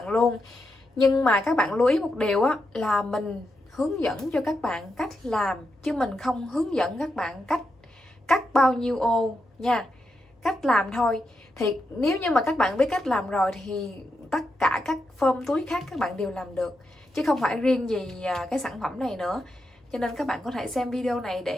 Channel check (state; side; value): normal; both; correlation 0.85